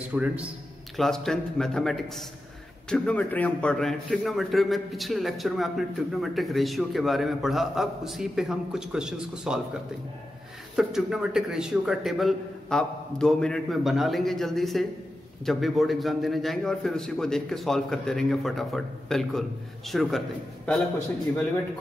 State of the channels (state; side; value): normal; both; correlation 0.91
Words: class 10th mathematics trigonometry हम पढ़ रहे हैं। ट्रिग्नोमेट्री में पिछले लेक्चर में आपने ट्रिग्नोमेट्रिक रेशियो के बारे में पढ़ा, अब उसी पे हम कुछ क्वेश्चंस को सॉल्व करते हैं। तो ट्रिग्नोमेट्रिक रेशियो का टेबल आप 2 मिनट में बना लेंगे जल्दी से, जब भी बोर्ड एग्जाम देने जाएंगे, और फिर उसी को देख के सॉल्व करते रहेंगे फटाफट। बिल्कुल शुरू करते हैं। पहला question, evaluate